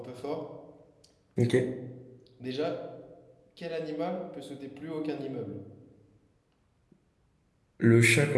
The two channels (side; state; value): both; identical; correlation 1.00